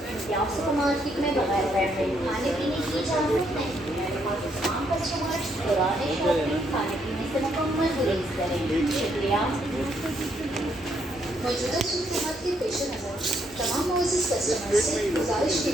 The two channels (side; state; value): both; normal; correlation 0.73